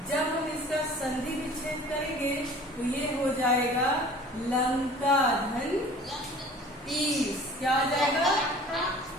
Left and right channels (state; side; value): normal; both; correlation 0.46